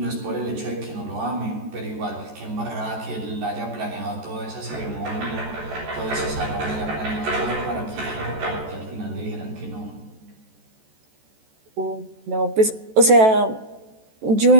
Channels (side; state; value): left; late; 14 ms